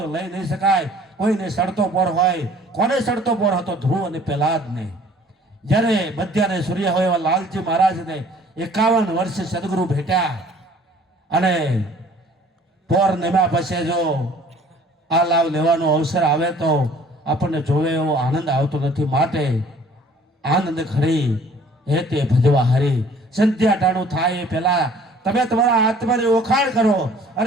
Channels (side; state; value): both; normal; correlation 0.53